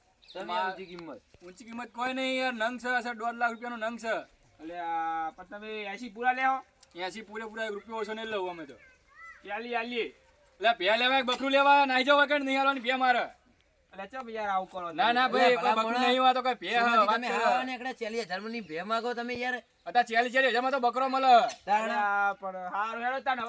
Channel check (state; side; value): identical; both; correlation 1.00